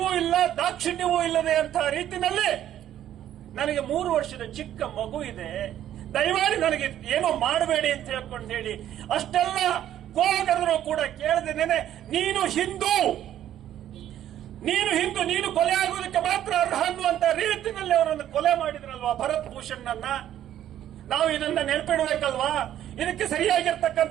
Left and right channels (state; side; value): quieter; left; 11.5 dB